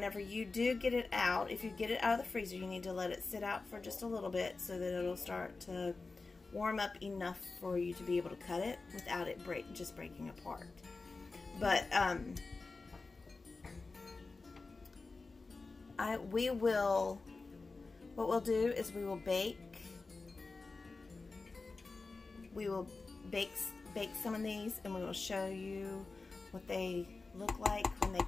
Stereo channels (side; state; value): right; quieter; 3.8 dB